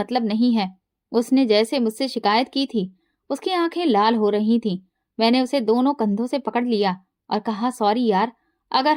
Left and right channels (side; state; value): both; identical; correlation 1.00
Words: नहीं है। उसने जैसे मुझसे शिकायत की थी। उसकी आंखें लाल हो रही थीं। मैंने उसे दोनों कंधों से पकड़ लिया और कहा, सॉरी यार, अगर